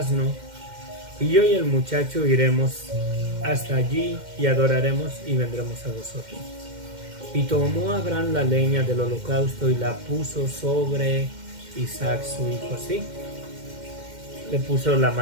y yo y el muchacho iremos hasta allí y adoraremos y vendremos a vosotros. Y tomó Abraham la leña del holocausto y la puso sobre Isaac su hijo, ¿sí? Le puso la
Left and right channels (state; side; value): late; left; 2.1 ms